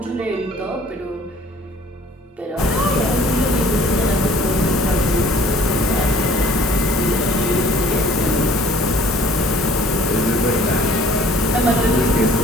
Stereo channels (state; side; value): normal; both; correlation 0.54